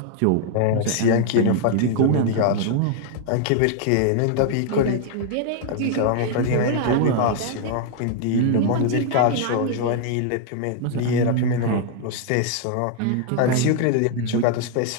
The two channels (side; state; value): both; different; correlation 0.00